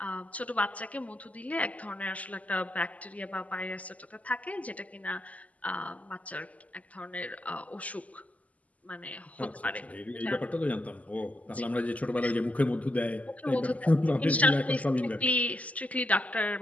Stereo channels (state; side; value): late; right; 0.072 ms